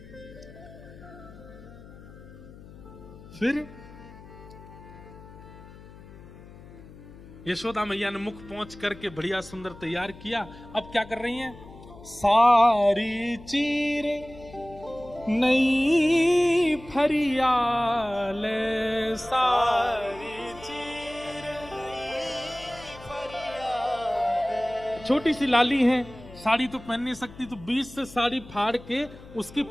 फिर यशोदा मैया ने मुख पहुंच करके बढ़िया सुंदर तैयार किया। अब क्या कर रही हैं? सारी चीर नई फरियाल, सारी चीर नई फरियाल। छोटी सी लाली है, साड़ी तो पहन नहीं सकती, तो बीच से साड़ी फाड़ के उसकी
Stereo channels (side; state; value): left; noise; hum, 18 dB below the sound